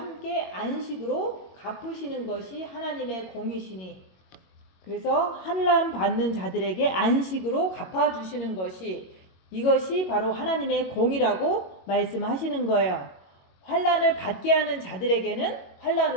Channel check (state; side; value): late; right; 22 ms